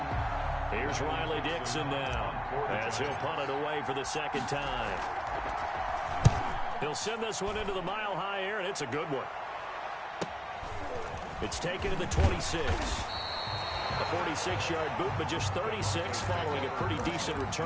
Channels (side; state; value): both; identical; correlation 1.00